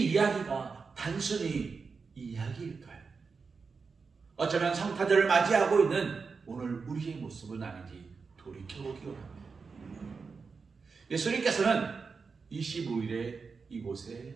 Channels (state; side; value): quieter; left; 5.0 dB